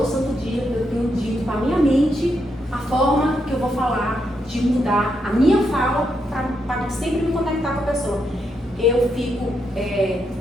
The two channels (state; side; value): normal; both; correlation 0.81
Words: santo dia eu tenho dito para a minha mente a forma que eu vou falar, de mudar a minha fala para sempre me conectar com a pessoa. Eu fico